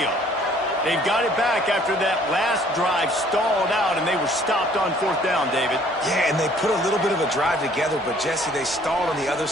They've got it back after that last drive stalled out, and they were stopped on fourth down, David. Yeah, and they put a little bit of a drive together, but, Jesse, they stalled on the other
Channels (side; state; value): both; normal; correlation 0.58